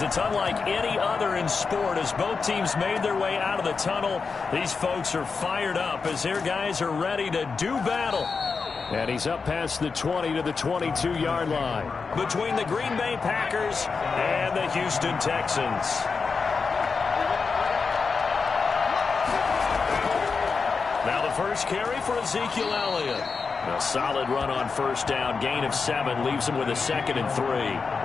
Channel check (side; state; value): right; quieter; 4.9 dB